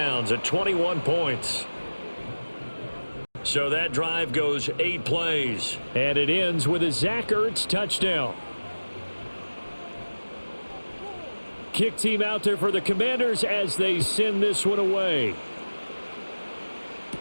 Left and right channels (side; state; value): both; inverted; correlation -1.00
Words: at 21 points. So that drive goes 8 plays. And it ends with a Zach Ertz touchdown. Kick team out there for the Commanders as they send this one away.